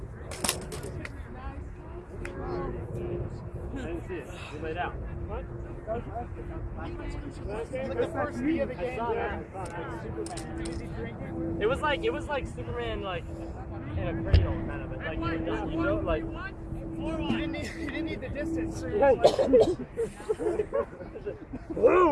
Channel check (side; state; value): both; identical; correlation 1.00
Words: I didn't see it. You laid out. What? It was like Superman like in a cradle kind of it. Like you know like You didn't need the distance.